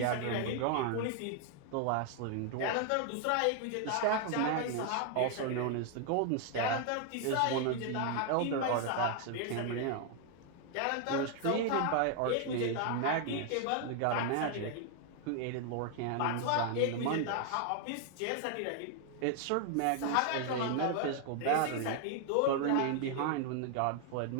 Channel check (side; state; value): both; different; correlation 0.00